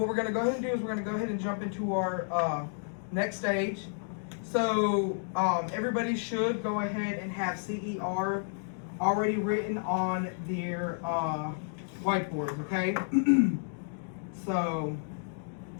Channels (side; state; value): right; silent; digital silence